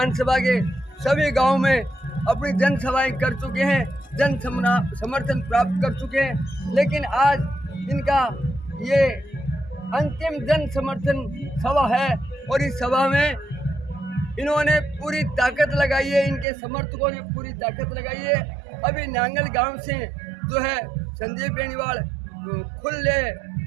के सभी गांव में अपनी जनसभाएं कर चुके हैं, जन समर्थन प्राप्त कर चुके हैं, लेकिन आज इनका ये अंतिम जन समर्थन सभा है और इस सभा में इन्होंने पूरी ताकत लगाई है, इनके समर्थकों ने पूरी ताकत लगाई है। अभी नांगल गांव से जो है संजीव बेनीवाल खुले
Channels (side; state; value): left; drops out; at 16.4 s